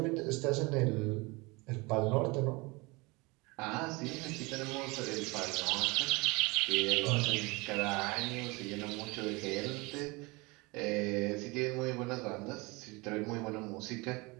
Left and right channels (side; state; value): left; quieter; 25.4 dB